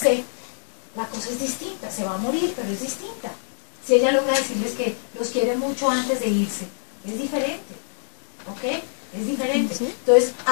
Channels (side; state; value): right; silent; digital silence